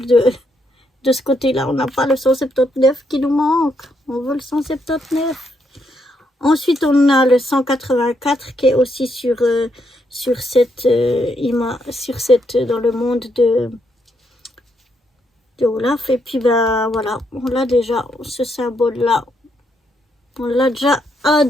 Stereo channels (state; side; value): normal; both; correlation 0.77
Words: de ce côté-là. On n'a pas le 179 qui nous manque. On veut le 179. Ensuite, on a le 184 qui est aussi sur cette image, dans le monde de Olaf. Et puis, ben voilà, on l'a déjà, ce symbole-là. On l'a déjà à